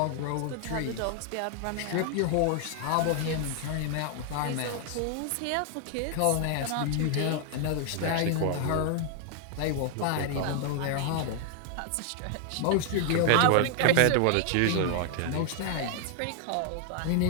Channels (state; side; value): different; both; correlation 0.00